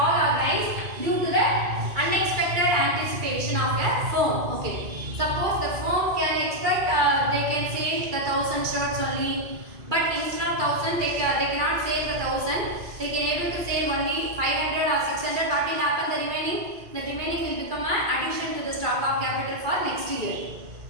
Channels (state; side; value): late; left; 2.3 ms